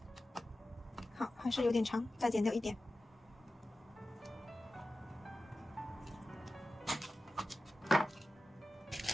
好，还是有点长，再剪掉一点。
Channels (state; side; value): normal; both; correlation 0.94